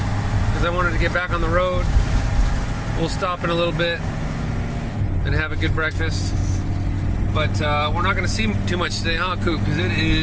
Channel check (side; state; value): both; identical; correlation 1.00